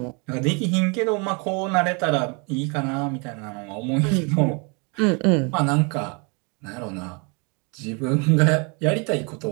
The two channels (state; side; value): quieter; left; 33.1 dB